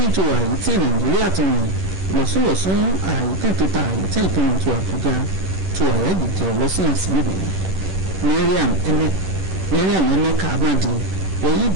tó wáyé tí Nàìjíríà tó rìn lọ́sùlọ́sùn àyè tẹ̀ tó ta àyè tẹ̀ tó rìn tó Àbújá tó àyà jíjẹ lọ́sìn àsìlè Mariam Emeka Amadi wọ́yí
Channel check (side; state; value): left; late; 11 ms